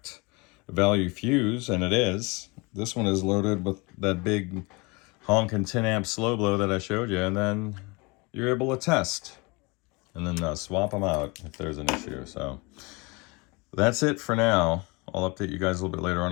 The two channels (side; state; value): right; quieter; 27.3 dB